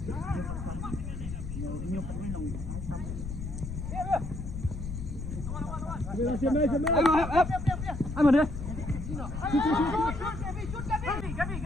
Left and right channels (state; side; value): noise; left; rumble, 6 dB below the sound